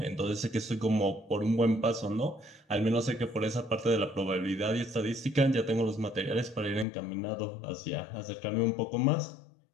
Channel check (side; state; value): right; drops out; at 6.9 s